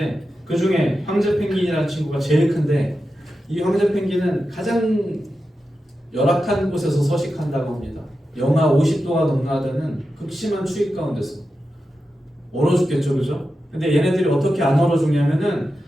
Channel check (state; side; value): normal; both; correlation 0.91